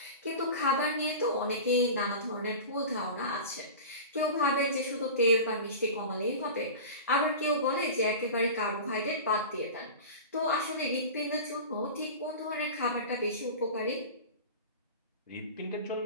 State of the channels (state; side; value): inverted; both; correlation -0.32